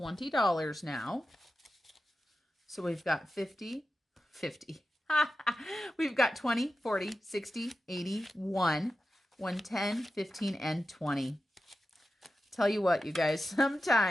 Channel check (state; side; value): normal; both; correlation 0.92